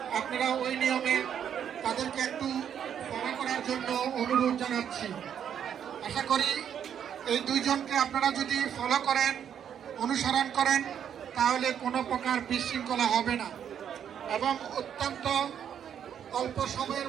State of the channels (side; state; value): left; quieter; 8.8 dB